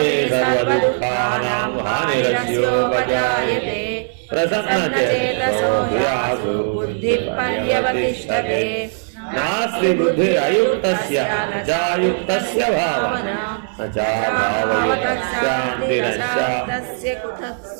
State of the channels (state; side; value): silent; left; digital silence